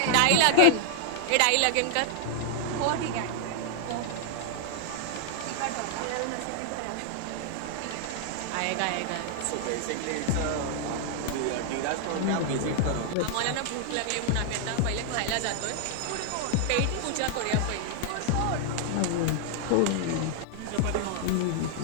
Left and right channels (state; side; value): different; both; correlation 0.00